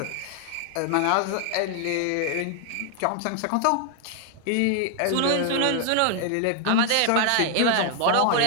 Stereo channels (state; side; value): different; both; correlation 0.00